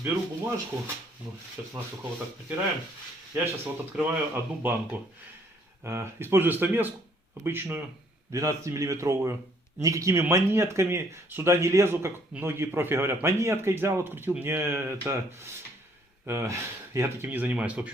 беру бумажку, ну, сейчас насухо вот так протираем. Я сейчас вот открываю одну банку. Использую стамеску обычную, 12-миллиметровую. Никакими монетками сюда не лезу, как многие профи говорят. Монеткой взял, открутил. Мне это... я таким не занимаюсь. В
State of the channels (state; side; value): normal; both; correlation 0.64